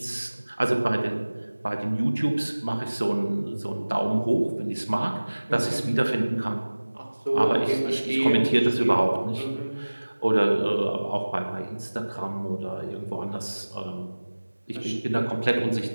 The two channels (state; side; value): inverted; both; correlation -1.00